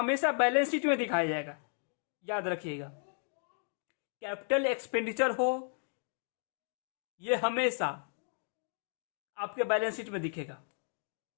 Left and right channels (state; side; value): silent; right; 55 dB below the other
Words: बैलेंस शीट में दिखाया जाएगा। याद रखिएगा, कैपिटल एक्सपेंडिचर हो ये हमेशा आपके बैलेंस शीट में दिखेगा,